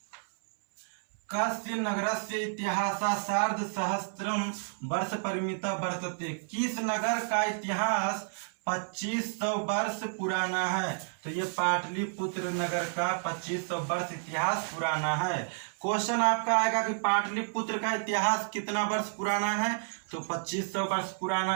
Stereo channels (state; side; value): silent; left; 57 dB below the other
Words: कस्य नगरस्य इतिहास सार्ध सहस्त्रम वर्ष परिमिता वर्तते, किस नगर का इतिहास 2500 वर्ष पुराना है? तो ये पाटलिपुत्र नगर का 2500 वर्ष इतिहास पुराना है। क्वेश्चन आपका आएगा कि पाटलिपुत्र का इतिहास कितना वर्ष पुराना है? तो 2500 वर्ष